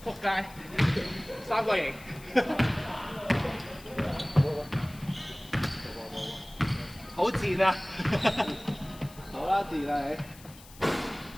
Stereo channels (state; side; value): noise; left; hiss, 21 dB below the sound